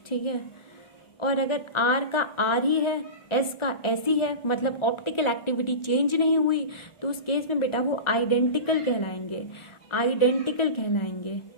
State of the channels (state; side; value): late; right; 1.4 ms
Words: ठीक है, और अगर आर का आर ही है, एस का एस ही है, मतलब ऑप्टिकल एक्टिविटी चेंज नहीं हुई, तो उस केस में बेटा वो आइडेंटिकल कहलाएंगे। आइडेंटिकल कहलाएंगे।